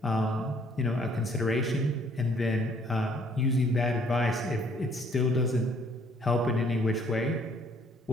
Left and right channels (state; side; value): normal; both; correlation 0.62